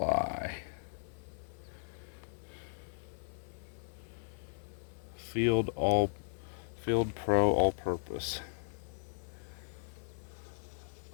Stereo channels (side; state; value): right; silent; 53 dB below the other